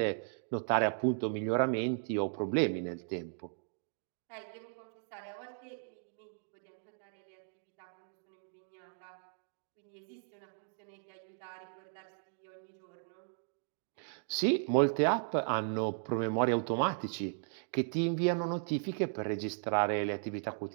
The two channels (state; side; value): silent; left; digital silence